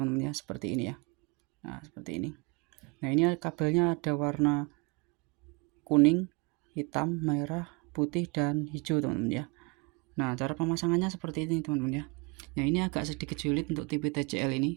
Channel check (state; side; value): quieter; left; 29.0 dB